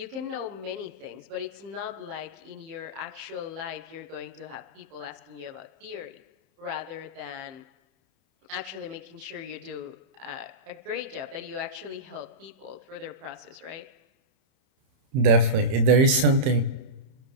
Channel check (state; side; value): late; left; 31 ms